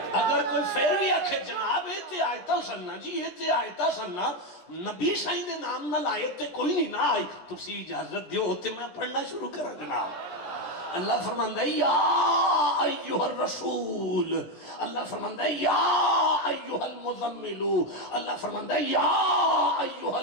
جی یہ تے آیتہ سننا نبی سائیں دے نام نہ لائے تے کوئی نہیں نہ آئی تسی اجازت دیو ہوتے میں پڑھنا شروع کرا جناب اللہ فرماندہ ہے یا ایوہ الرسول اللہ فرماندہ ہے یا ایوہ المزملو اللہ فرماندہ ہے یا ایوہ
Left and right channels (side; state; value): right; late; 17 ms